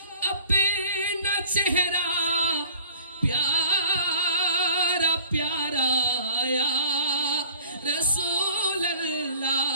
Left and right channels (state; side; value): inverted; both; correlation -0.50